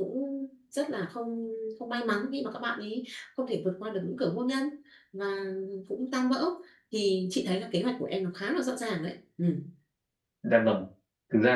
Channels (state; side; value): identical; both; correlation 1.00